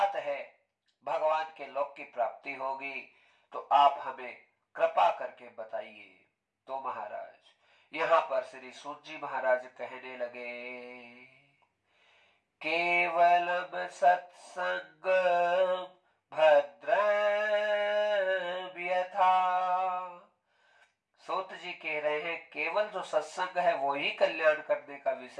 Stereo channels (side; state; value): both; identical; correlation 1.00